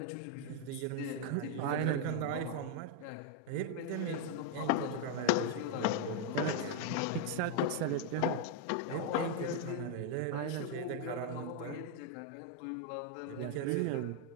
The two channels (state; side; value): different; both; correlation 0.00